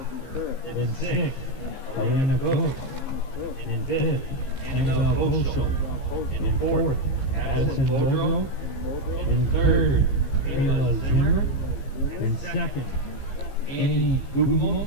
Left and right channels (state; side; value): late; right; 15 ms